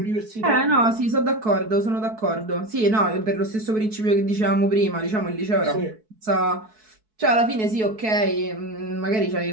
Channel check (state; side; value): late; left; 4.6 ms